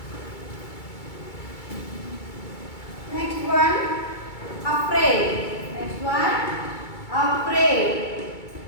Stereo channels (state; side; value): late; right; 2.3 ms